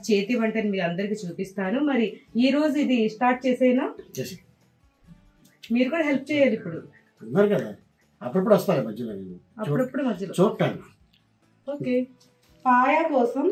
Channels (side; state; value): both; identical; correlation 1.00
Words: చేతి వంటని మీ అందరికి చూపిస్తాను. మరి ఈ రోజు ఇది స్టార్ట్ చేసేనా? మీరు కూడా హెల్ప్ చేయాలి. ఇప్పుడు కదా, అప్పుడప్పుడు వస్తాయి మధ్యలో, అప్పుడప్పుడు మధ్యలో చూడటాను. ఓకే, పాయ కోసం